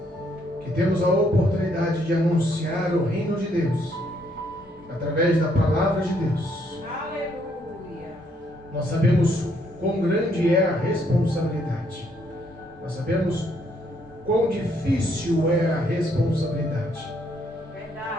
que temos a oportunidade de anunciar o reino de Deus através da palavra de Deus, Aleluia. nós sabemos quão grande é a responsabilidade. Nós sabemos quão difícil é a responsabilidade.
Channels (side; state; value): both; normal; correlation 0.70